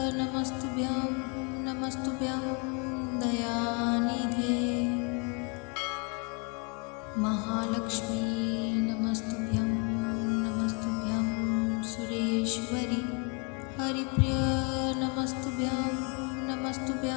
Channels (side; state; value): right; quieter; 34.1 dB